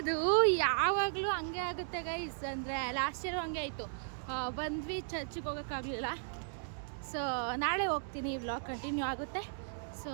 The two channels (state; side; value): silent; left; digital silence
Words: ಯಾವಾಗಲೂ ಹಂಗೆ ಆಗುತ್ತೆ ಗೈಸ್. ಅಂದರೆ ಲಾಸ್ಟ್ ಇಯರ್ ಹಂಗೆ ಆಯಿತು. ಬಂದ್ವಿ, ಚರ್ಚಿಗೆ ಹೋಗೋಕ್ಕಾಗಲಿಲ್ಲ. ಸೊ ನಾಳೆ ಹೋಗ್ತೀನಿ, ಈ ವ್ಲಾಗ್ ಕಂಟಿನ್ಯೂ ಆಗುತ್ತೆ. ಸೊ